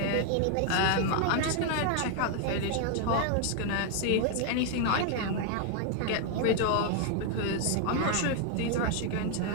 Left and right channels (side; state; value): both; different; correlation 0.01